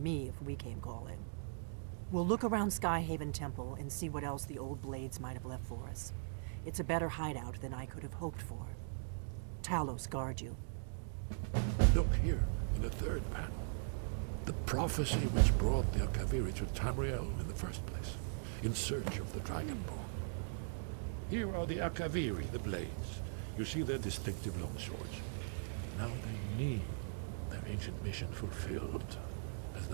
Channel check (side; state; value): left; silent; digital silence